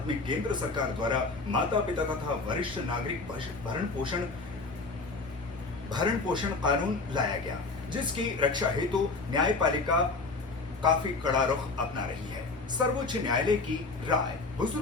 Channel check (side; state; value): right; quieter; 3.8 dB